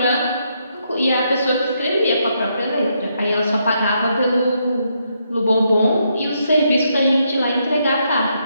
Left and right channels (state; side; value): inverted; both; correlation -0.77